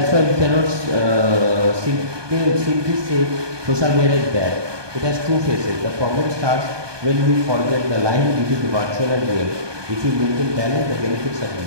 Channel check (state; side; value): late; left; 1.2 ms